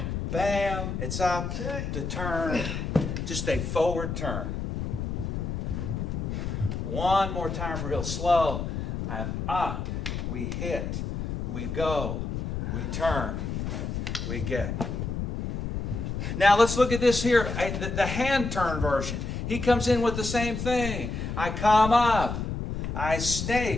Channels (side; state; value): left; noise; rumble, 4 dB below the sound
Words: bam. It's up to turn. Just a forward turn. One more time real slow. I'm up. We hit. We go. We turn. We get. Now let's look at this here. The hand turn version. He comes in with the same thing. I come up. I